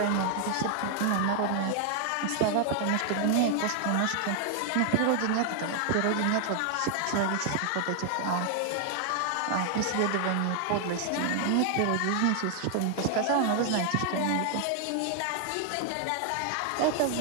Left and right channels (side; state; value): both; different; correlation 0.00